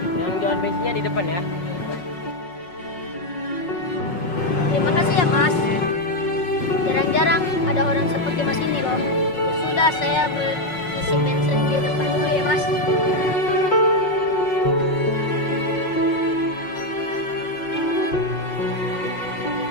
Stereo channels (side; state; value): right; late; 5.5 ms